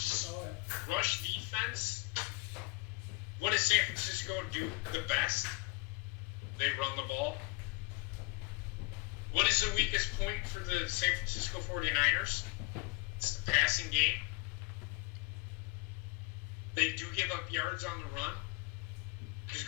rush defense. What does San Francisco do the best? They run the ball. What is the weakest point for the San Francisco 49ers? It's the passing game. They do give up yards on the run because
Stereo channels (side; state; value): right; quieter; 25.3 dB